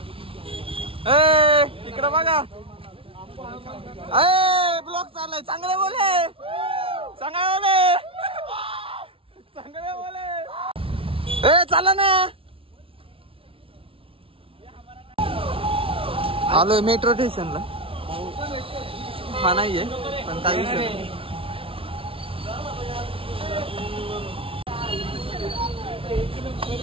इकडे बघा. ब्लॉक चाललाय. चांगले बोले, चांगले बोले, चांगले बोले. चला ना. आलोय मेट्रो स्टेशनला. हा नाहीये पण काही विषय नाही.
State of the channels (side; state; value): left; late; 0.26 ms